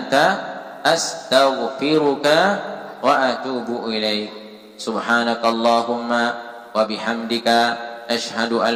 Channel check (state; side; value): identical; both; correlation 1.00